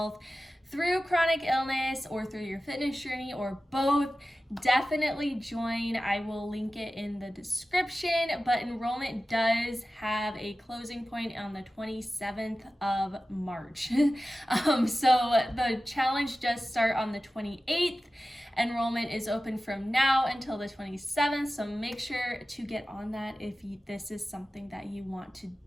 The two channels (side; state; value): both; normal; correlation 0.95